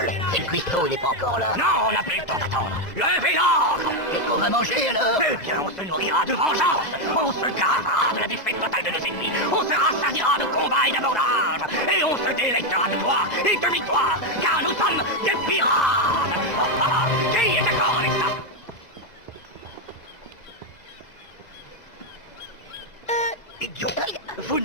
Et le cuistot, il n'est pas encore là. Non, on n'a plus le temps d'attendre. Levez l'ancre. Qu'est-ce qu'on va manger, alors? Eh bien, on se nourrira de vengeance. On se gravera de la défaite totale de nos ennemis. On se rassasiera de combats et d'abondance. Et on se délectera de gloire et de victoire. Car nous sommes des pirates. Qui est d'accord avec ça? Idiot. Vous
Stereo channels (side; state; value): right; late; 2.0 ms